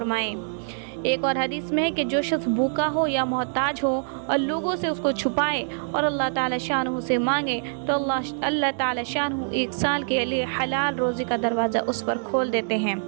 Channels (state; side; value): silent; left; 62 dB below the other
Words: ایک اور حدیث میں ہے کہ جو شخص بھوکا ہو یا محتاج ہو اور لوگوں سے اس کو چھپائے اور اللہ تعالی شانہ سے مانگے تو اللہ تعالی شانہ 1 سال کے لیے حلال روزی کا دروازہ اس پر کھول دیتے ہیں۔